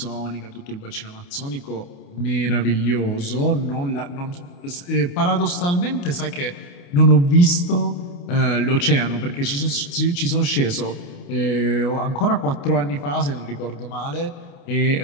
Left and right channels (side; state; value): right; late; 28 ms